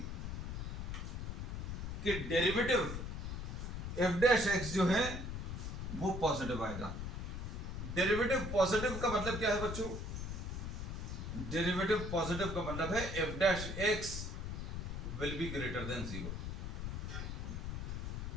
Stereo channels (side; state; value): left; noise; rumble, 4 dB below the sound